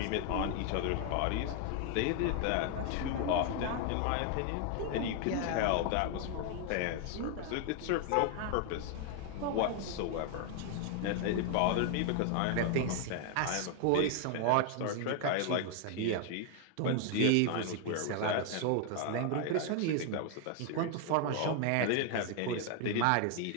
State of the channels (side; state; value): both; different; correlation 0.00